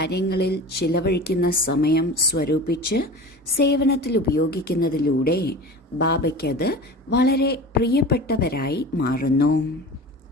ചിലവഴിക്കുന്ന സമയം സ്വരൂപിച്ച് സേവനത്തിൽ ഉപയോഗിക്കുന്നതിലൂടെ ബാബയ്ക്കത് വളരെ പ്രിയപ്പെട്ടവരായി മാറുന്നു.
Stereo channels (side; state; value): both; normal; correlation 0.34